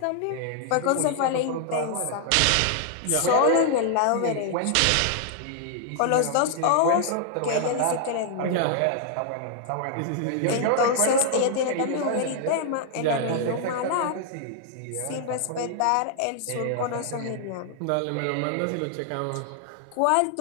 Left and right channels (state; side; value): different; both; correlation 0.00